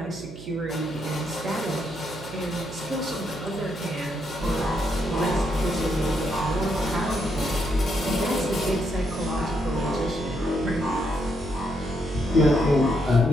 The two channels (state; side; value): noise; right; hum, 14 dB below the sound